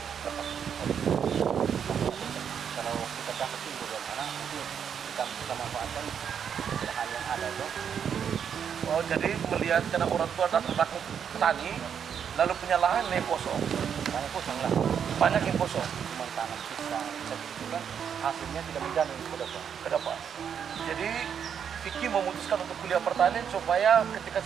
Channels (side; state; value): left; quieter; 7.8 dB